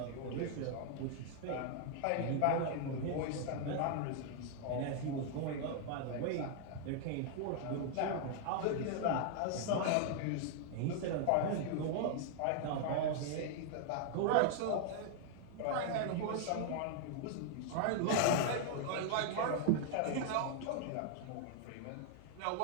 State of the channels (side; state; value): both; different; correlation 0.00